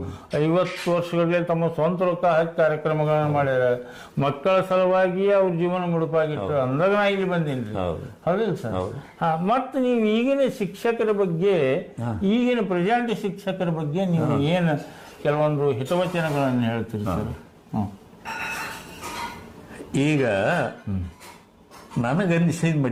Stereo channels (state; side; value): identical; both; correlation 1.00